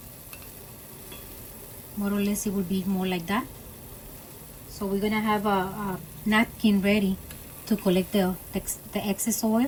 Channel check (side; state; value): both; identical; correlation 1.00